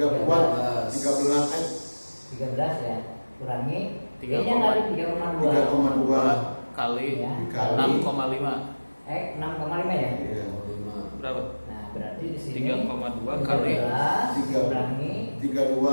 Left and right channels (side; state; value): both; inverted; correlation -1.00